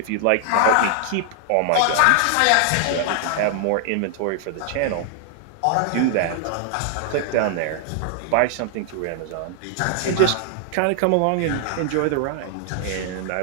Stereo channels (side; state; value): both; different; correlation 0.00